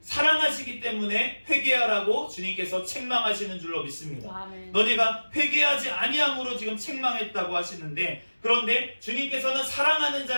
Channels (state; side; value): inverted; both; correlation -1.00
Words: 때문에 회개하라고 주님께서 책망하시는 줄로 믿습니다. 아멘. 너네가 회개하지 아니함으로 지금 책망했다고 하시는데, 그런데 주님께서는 사랑하는